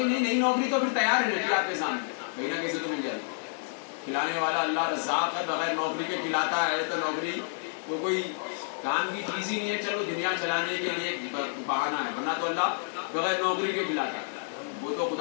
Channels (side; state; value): right; silent; 56 dB below the other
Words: نہیں نوکری تو پھر تیار ہے آپ کے سامنے، کہیں نہ کسی تو مل جائے گی. کھلانے والا اللہ رزاق ہے، بغیر نوکری کے کھلاتا ہے، تو نوکری تو کوئی کام کی چیز ہی نہیں ہے. چلو دنیا چلانے کے لیے بہانہ ہے، ورنہ تو اللہ بغیر نوکری کے کھلاتا ہے. وہ تو